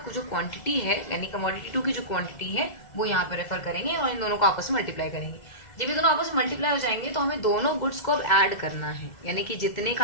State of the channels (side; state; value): right; late; 2.0 ms